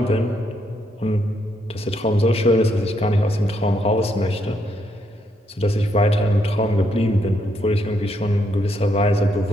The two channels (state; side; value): normal; both; correlation 0.76